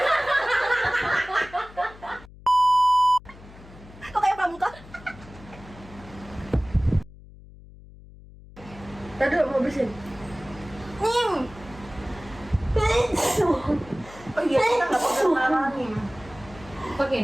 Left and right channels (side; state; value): left; noise; hum, 20 dB below the sound